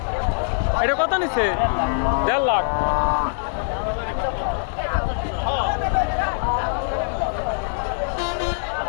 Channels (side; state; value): right; silent; 64 dB below the other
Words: এটা কত নিছে? 1.5 লাখ।